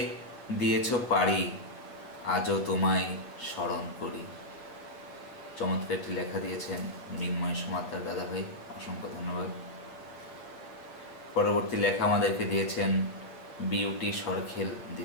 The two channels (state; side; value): late; right; 7.9 ms